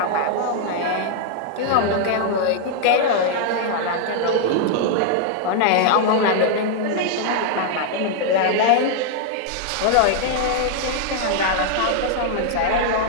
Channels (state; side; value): different; both; correlation 0.00